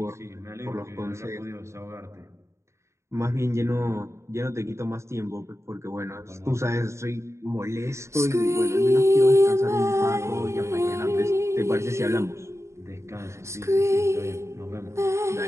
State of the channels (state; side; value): late; left; 0.14 ms